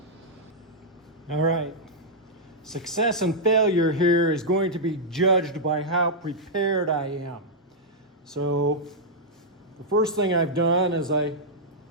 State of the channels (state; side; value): normal; both; correlation -0.07